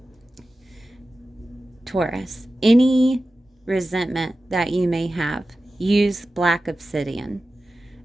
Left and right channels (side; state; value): both; normal; correlation 0.94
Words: Taurus, any resentment that you may have, use black obsidian,